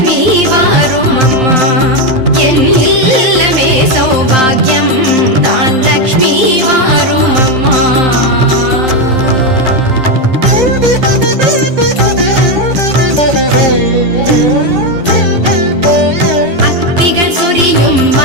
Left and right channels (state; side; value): late; left; 12 ms